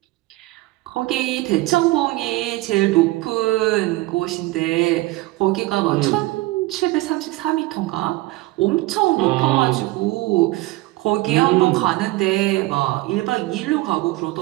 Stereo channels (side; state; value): left; quieter; 19.5 dB